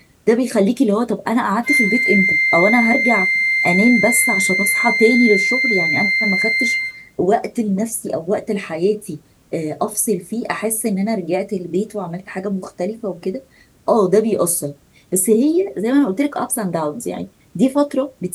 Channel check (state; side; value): identical; both; correlation 1.00